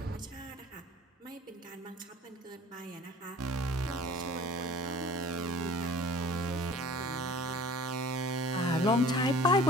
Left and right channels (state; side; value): normal; both; correlation 0.47